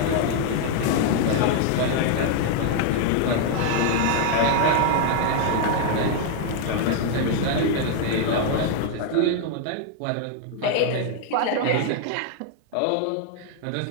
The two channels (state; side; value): different; both; correlation 0.00